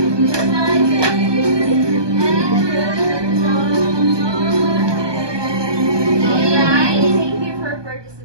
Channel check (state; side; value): late; left; 1.2 ms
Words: Alright, thank you for